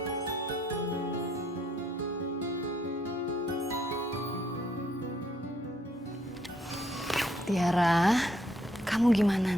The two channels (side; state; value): both; normal; correlation 0.70